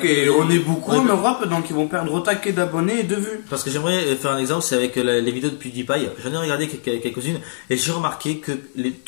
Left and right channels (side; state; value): right; silent; 57 dB below the other